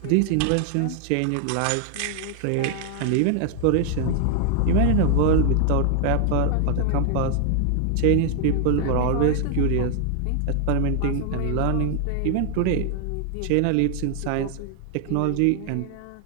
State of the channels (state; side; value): different; both; correlation 0.00